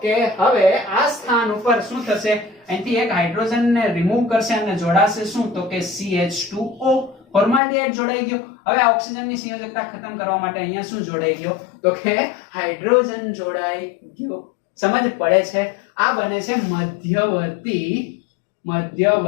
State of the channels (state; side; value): drops out; right; at 7.6 s